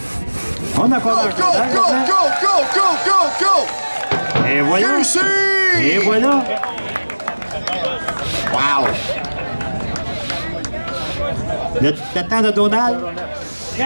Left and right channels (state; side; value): inverted; both; correlation -1.00